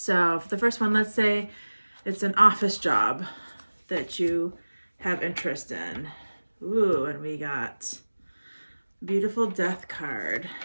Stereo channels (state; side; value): inverted; both; correlation -1.00